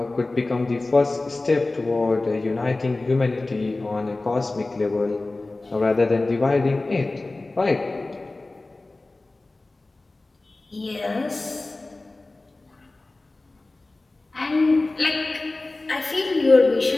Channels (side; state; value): right; quieter; 3.1 dB